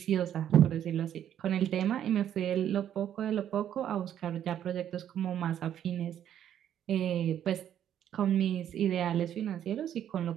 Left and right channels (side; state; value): left; quieter; 10.3 dB